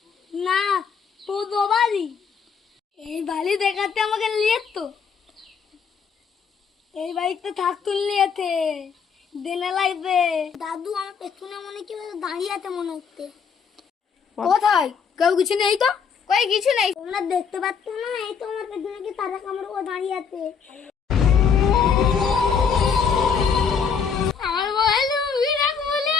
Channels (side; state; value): right; quieter; 6.4 dB